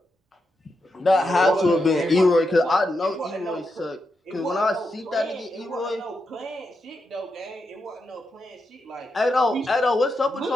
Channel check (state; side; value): normal; both; correlation 0.85